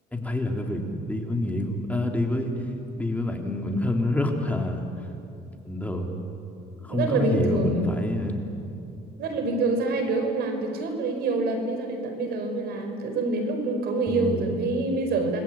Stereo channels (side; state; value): both; normal; correlation 0.52